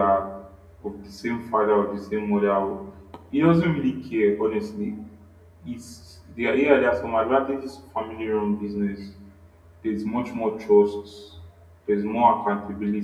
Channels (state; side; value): identical; both; correlation 1.00